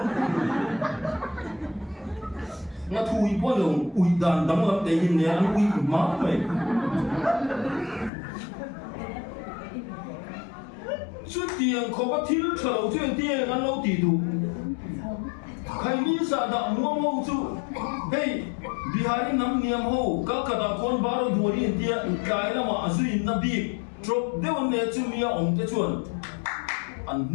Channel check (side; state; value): right; drops out; at 8.1 s